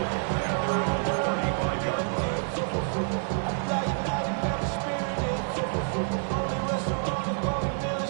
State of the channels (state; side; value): silent; left; 55 dB below the other